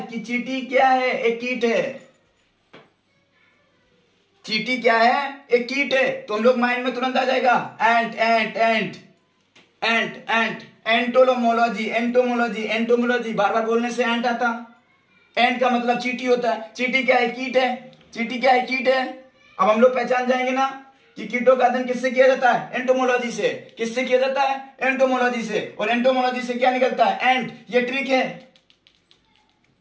कीट है। चींटी क्या है, एक कीट है। तो हम लोग माइंड में तुरंत आ जाएगा एंट। एंटोमोलॉजी बार बार बोलने से एंट आता। एंट का मतलब चींटी होता है। चींटी क्या है, कीट है। अब हम लोग पहचान जाएंगे ना कि कीटों का अध्ययन किससे किया जाता है? एंटोमोलॉजी से। किससे किया जाता है? एंटोमोलॉजी से। और एंटोमोलॉजी से क्या निकलता है? एंट। ये ट्रिक है,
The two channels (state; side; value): identical; both; correlation 1.00